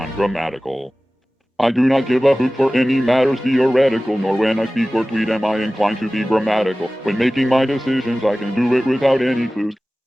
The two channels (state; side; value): normal; both; correlation 0.97